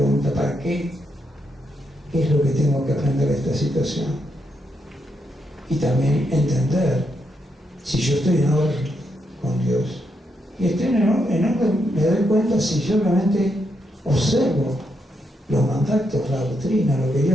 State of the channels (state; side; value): normal; both; correlation 0.81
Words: ¿para qué? ¿Qué es lo que tengo que aprender de esta situación? Y también entender si yo estoy en orden con Dios. Y estoy en orden, me doy cuenta si yo realmente observo los mandatos, la doctrina, lo que